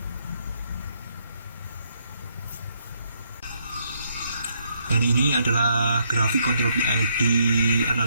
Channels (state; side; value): inverted; both; correlation -0.73